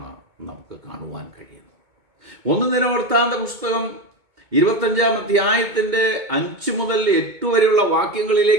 നമുക്ക് കാണുവാൻ കഴിയുന്നത്. 1 ദിനവൃത്താന്ത പുസ്തകം 25-ാം അധ്യായത്തിൻ്റെ 5 മുതൽ 8 വരെയുള്ള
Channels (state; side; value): late; left; 2.2 ms